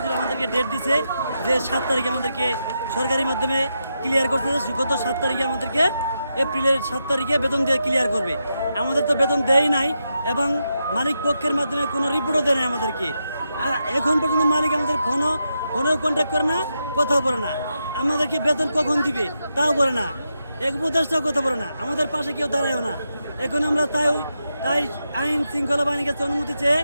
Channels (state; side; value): inverted; both; correlation -0.86